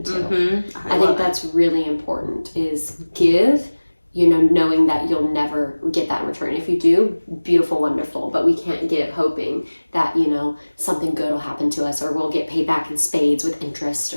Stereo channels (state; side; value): inverted; both; correlation -1.00